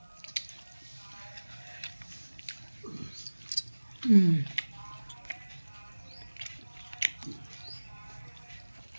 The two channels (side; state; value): both; inverted; correlation -1.00